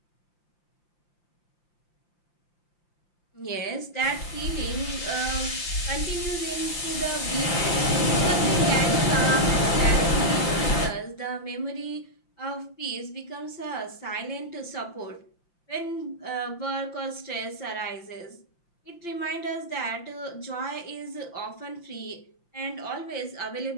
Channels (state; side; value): late; right; 5.8 ms